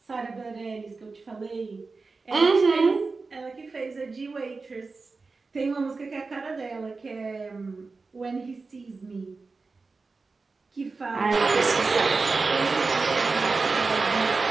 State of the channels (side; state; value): left; quieter; 4.1 dB